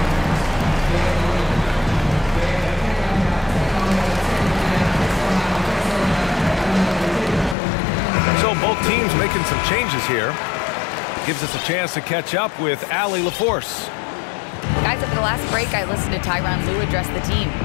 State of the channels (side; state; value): right; drops out; at 7.6 s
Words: So both teams making some changes here. Gives us a chance to catch up with Allie LaForce. Guys, at the last break, I listened to Tyronn Lue address the team.